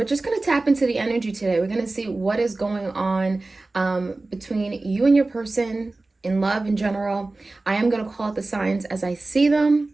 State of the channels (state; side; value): quieter; left; 3.2 dB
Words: just going to tap into the energy today. We're going to see what is going on between you and your person in love in general. I am going to call out the signs as I see them.